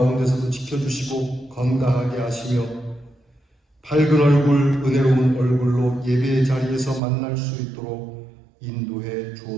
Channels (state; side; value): drops out; left; at 7.0 s